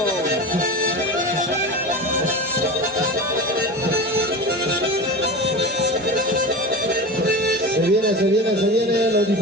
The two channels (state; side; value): normal; both; correlation 0.28